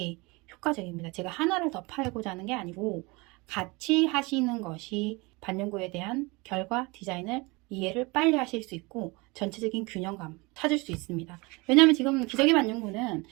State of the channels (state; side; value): quieter; left; 25.8 dB